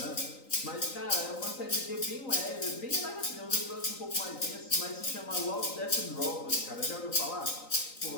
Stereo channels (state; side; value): late; right; 3.9 ms